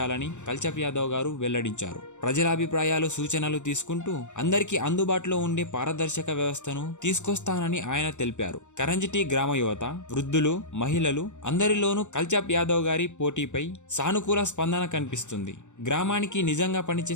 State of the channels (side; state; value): right; late; 0.84 ms